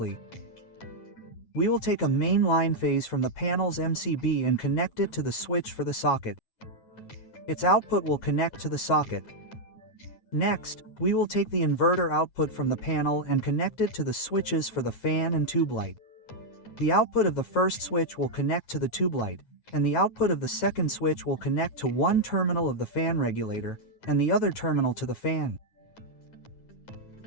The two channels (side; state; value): right; late; 9.3 ms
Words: We will take a main line phase from the panel's MCB and connect it to the switch for the socket. Its output will connect to the socket. Next, we will take the inverter output from the panel and connect it to the switches for the fan and tube light. The output of the first switch will connect to the tube light, and the output of the second switch will connect to one terminal of the fan regulator, and the other terminal to the fan.